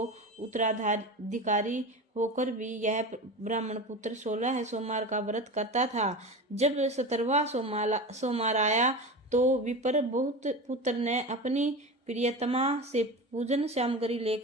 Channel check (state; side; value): normal; both; correlation 0.28